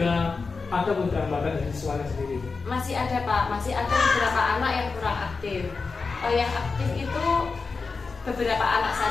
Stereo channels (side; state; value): right; quieter; 4.5 dB